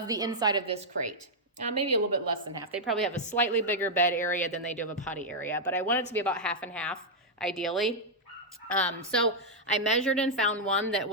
the inside of this crate, maybe a little bit less than half. They probably have a slightly bigger bed area than they do have a potty area, but I want it to be about half and half, ideally. So I measured and found one that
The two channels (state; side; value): normal; both; correlation -0.04